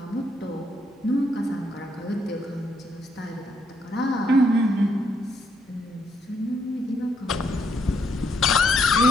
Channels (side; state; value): both; normal; correlation 0.74